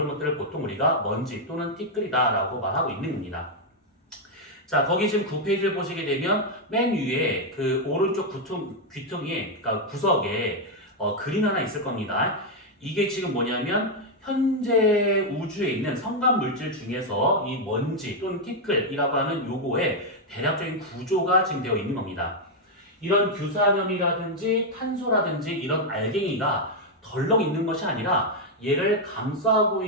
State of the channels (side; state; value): both; normal; correlation 0.00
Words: 것들을 보통 우리가 먼지 또는 티끌이다라고 말하고 있는 겁니다. 자, 거기 지금 9페이지를 보시게 되면 맨 위에 그 오른쪽 귀퉁이에, 그러니까 구석에 그림 하나 있을 겁니다. 이게 지금 뭐냐면 현재 우주에 있는 성간 물질 중에서 이 먼지 또는 티끌이라고 하는 요거의 대략적인 구조가 지금 되어 있는 겁니다. 이런 규산염이라든지 탄소라든지 이런 알갱이가 덜렁 있는 것이 아니라 얘를 감싸고